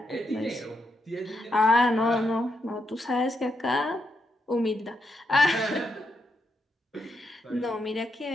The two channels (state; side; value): normal; both; correlation 0.81